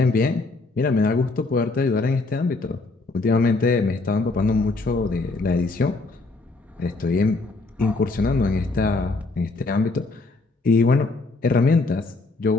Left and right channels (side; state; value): right; quieter; 3.5 dB